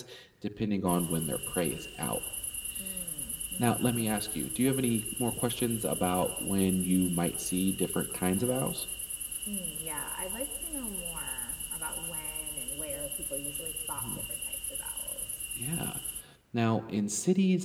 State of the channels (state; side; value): identical; both; correlation 1.00